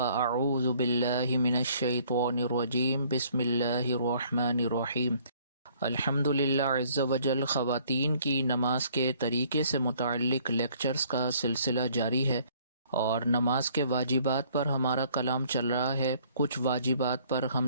باللہ من الشیطان الرجیم بسم اللہ الرحمن الرحیم۔ الحمد للہ عز وجل خواتین کی نماز کے طریقے سے متعلق لیکچرز کا سلسلہ جاری ہے، اور نماز کے واجبات پر ہمارا کلام چل رہا ہے۔ کچھ واجبات پر ہم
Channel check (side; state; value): both; inverted; correlation -0.60